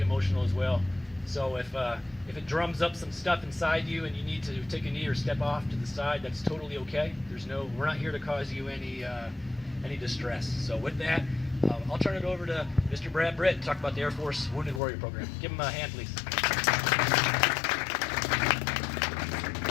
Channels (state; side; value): drops out; right; at 14.8 s